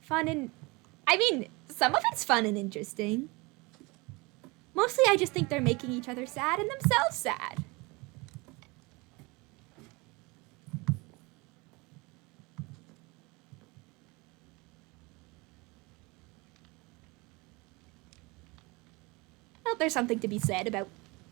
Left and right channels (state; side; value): quieter; left; 25.6 dB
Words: fun and... I mean, some of it's fun and interesting. Mostly I just think they're making each other sad and themselves sad. Well, there's something to be said about,